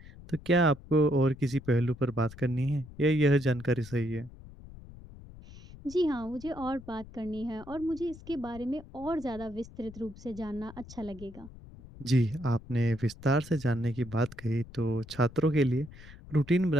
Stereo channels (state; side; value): noise; left; rumble, 18 dB below the sound